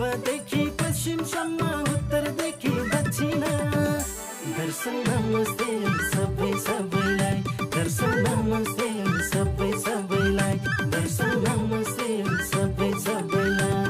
पश्चिमसम्म उत्तरदेखि दक्षिण दर्शन नमस्ते सबै सबैलाई दर्शन नमस्ते सबै सबैलाई दर्शन नमस्ते सबै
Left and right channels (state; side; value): identical; both; correlation 1.00